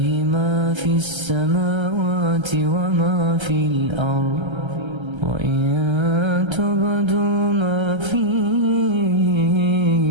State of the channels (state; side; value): late; left; 1.3 ms